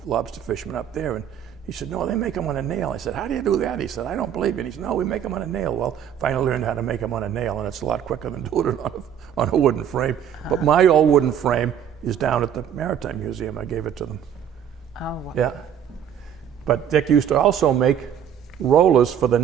lobster fishermen up there. And he said, no, they make them on a nail. I said, how do you do that? He said, I don't believe it. He said, no, we make them on a nail. Well, finally learned how to make them on a nail, and it's a lot quicker than doing it on a wooden frame. But my old wooden frame is down at the Maritime Museum. I gave it to them. Oh, wow. Yeah. But Dick used to also make rollers for the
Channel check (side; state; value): left; quieter; 9.0 dB